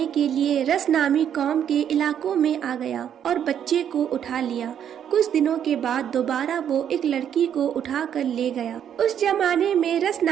کے لیے رس نامی قوم کے علاقوں میں آ گیا اور بچے کو اٹھا لیا۔ کچھ دنوں کے بعد دوبارہ وہ ایک لڑکی کو اٹھا کر لے گیا۔ اس زمانے میں رس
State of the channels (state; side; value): quieter; left; 9.2 dB